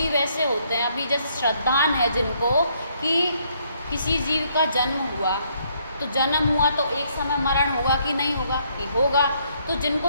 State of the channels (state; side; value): inverted; both; correlation -0.70